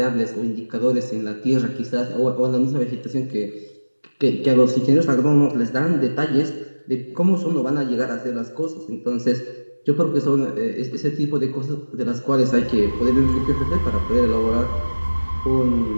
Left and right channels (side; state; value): both; inverted; correlation -1.00